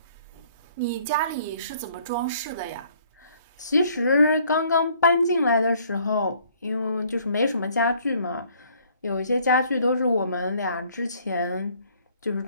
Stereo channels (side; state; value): both; inverted; correlation -0.61